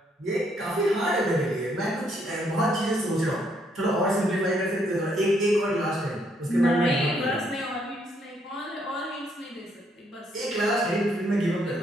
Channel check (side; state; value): both; normal; correlation 0.72